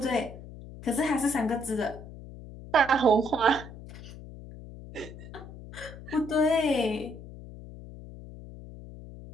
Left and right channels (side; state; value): left; noise; hum, 15 dB below the sound